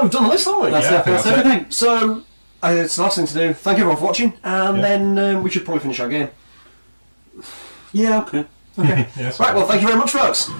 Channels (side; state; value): both; inverted; correlation -1.00